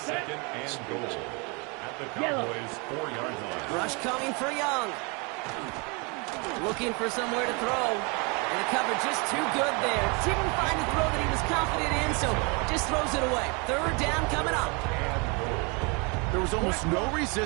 and goal at the Cowboys' 4-yard line. Rush coming for Young. Looking for somewhere to throw. And the cover just too good there. Didn't find the throw that he was confident in, so just throws it away. 3rd down coming up. There was almost no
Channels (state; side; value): quieter; left; 31.3 dB